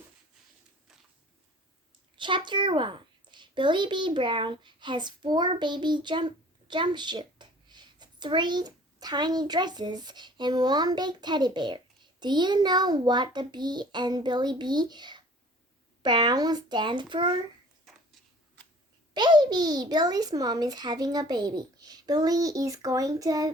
Chapter 1. Billie B. Brown has 4 baby jumpsuits, 3 tiny dresses, and 1 big teddy bear. Do you know what the B and Billie B. Brown stand for? Baby! Billie's mom is having a baby. Billie is going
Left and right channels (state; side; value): normal; both; correlation 0.49